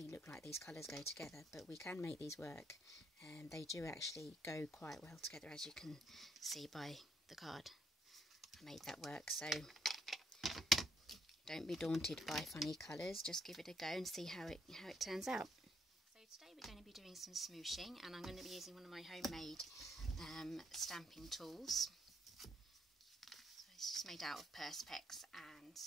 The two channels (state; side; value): normal; both; correlation 0.72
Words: look like these colours go together, but we can make these work, and they do actually go quite well together, as you can see by the card. I made that work, so don't be daunted by funny colours, just give it a go and see how it turns out. So today we're going to be doing some smooshing, and I'm going to be using one of my homemade stamping tools. So it's just made out of Perspex and